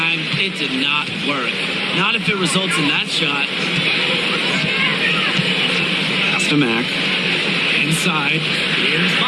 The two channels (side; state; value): both; identical; correlation 1.00